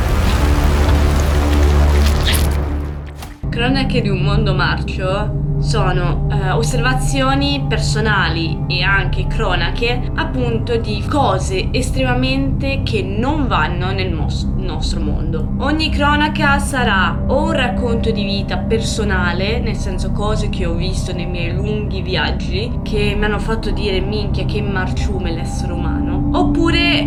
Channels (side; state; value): both; identical; correlation 1.00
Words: Cronache di un mondo marcio sono osservazioni personali e anche cronache appunto di cose estremamente che non vanno nel nostro mondo. Ogni cronaca sarà o un racconto di vita personale, nel senso cose che ho visto nei miei lunghi viaggi che mi hanno fatto dire minchia che marciume l'essere umano,